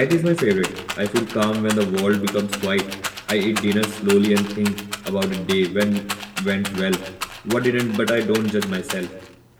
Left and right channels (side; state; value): both; identical; correlation 1.00